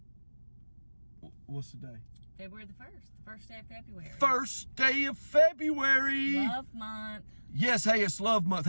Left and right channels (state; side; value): inverted; both; correlation -1.00